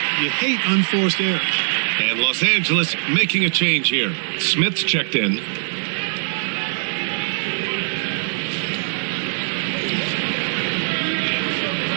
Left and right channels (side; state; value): left; silent; 65 dB below the other